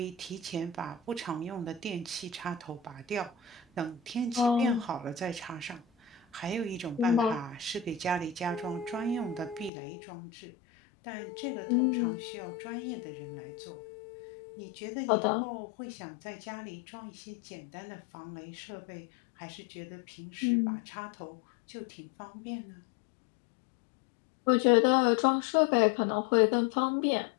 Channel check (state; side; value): drops out; right; at 9.7 s